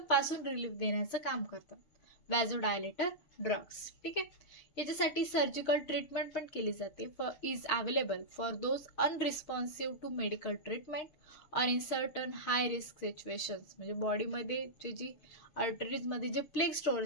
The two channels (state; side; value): late; right; 6.5 ms